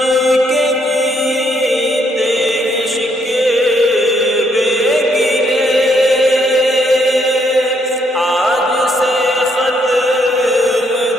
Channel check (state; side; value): normal; both; correlation 0.72